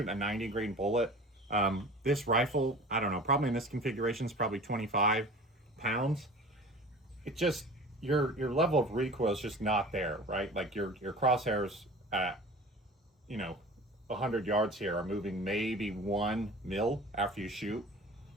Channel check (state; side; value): normal; both; correlation 0.40